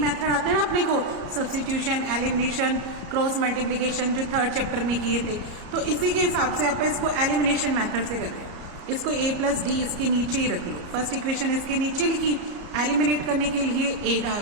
आते हैं ना अपने को, सब्स्टिट्यूशन, एलिमिनेशन, क्रॉस मल्टीप्लिकेशन, जो थर्ड चैप्टर में किए थे, तो इसी के हिसाब से आप इसको एलिमिनेशन मेथड से कर रहे हैं। इसको a प्लस डी इसके नीचे ही रख लो, फर्स्ट इक्वेशन इसके नीचे लिखी, एलिमिनेट करने के लिए a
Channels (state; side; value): late; left; 34 ms